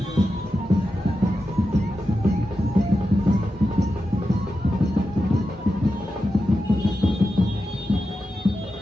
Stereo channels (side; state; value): both; normal; correlation 0.90